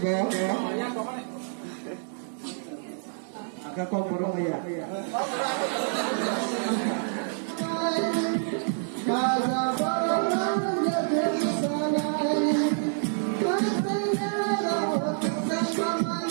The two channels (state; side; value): silent; left; digital silence